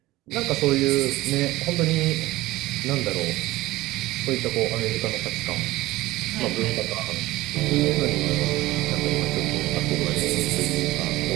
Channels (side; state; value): left; quieter; 18.1 dB